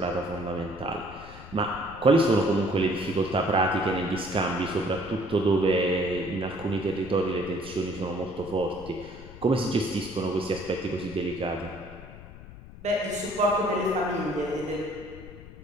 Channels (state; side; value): noise; left; rumble, 16 dB below the sound